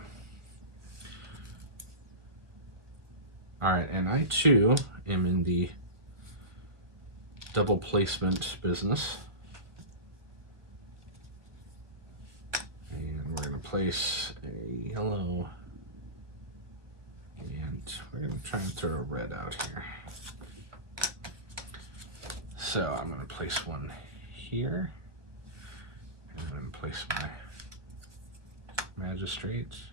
All right, and I too am in the double placement business. And we're going to place a yellow, and we're going to try and throw a red out here. So I'm going to place one here, and I'm going to place my magistrate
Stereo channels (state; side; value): late; left; 1.5 ms